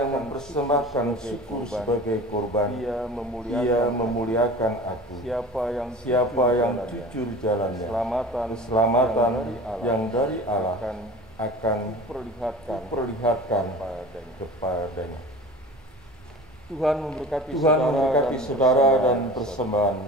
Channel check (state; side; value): normal; both; correlation 0.38